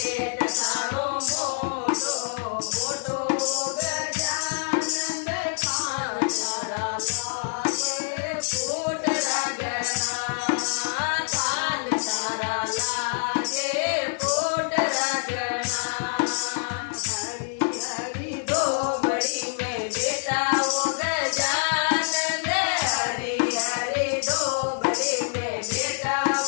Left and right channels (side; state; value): right; silent; digital silence